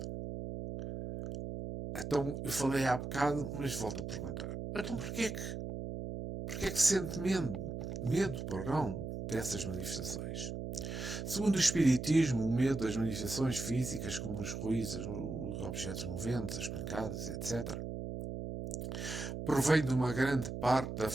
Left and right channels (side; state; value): right; noise; hum, 6 dB below the sound